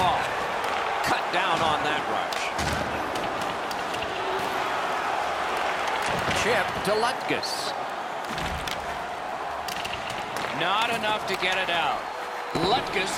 Cut down on that rush. Chip to Lutkus. Not enough to get it out.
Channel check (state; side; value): identical; both; correlation 1.00